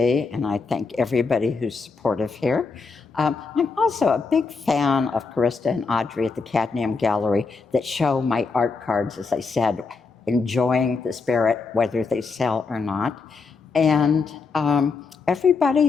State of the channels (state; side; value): quieter; right; 4.6 dB